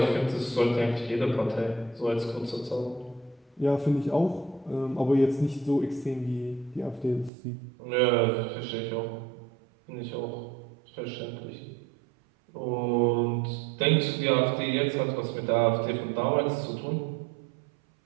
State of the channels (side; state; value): left; drops out; at 7.3 s